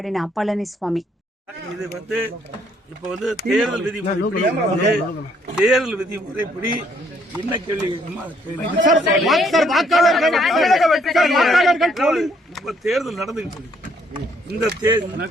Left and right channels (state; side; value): normal; both; correlation 0.67